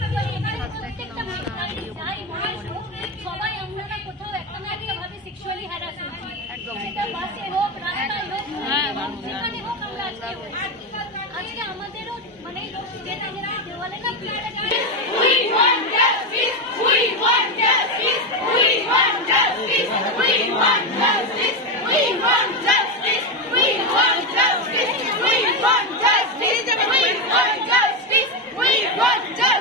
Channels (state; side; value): normal; both; correlation 0.12